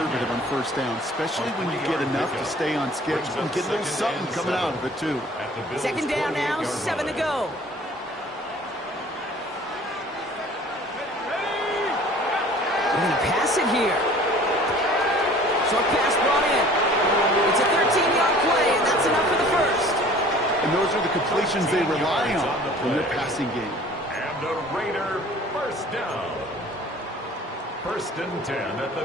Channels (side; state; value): both; normal; correlation 0.49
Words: on 1st down, especially when you get enough to stay on schedule and get a little something coming out of it, too. 2nd down now, 7 to go. We're going to pass it here. Short pass brought in. It's a 13-yard play, and that's enough for the 1st. And those are the completions they rely on in their passing game. And a Raider 1st down. 1st and 10 at